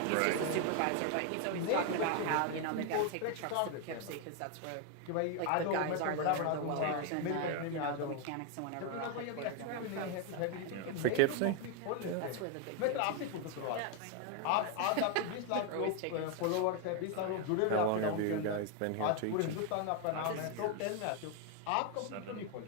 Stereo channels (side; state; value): both; different; correlation 0.01